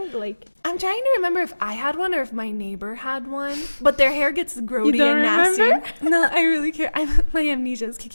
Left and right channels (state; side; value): inverted; both; correlation -1.00